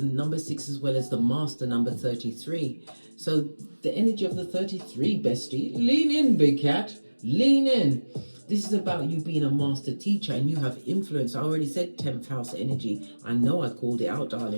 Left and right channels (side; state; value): both; inverted; correlation -1.00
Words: 6 as well as the master number 33. So the energy of the 33, bestie, lean in, big cat, lean in. This is about you being a master teacher and you have influence. I already said 10th house energy. I know I called it out,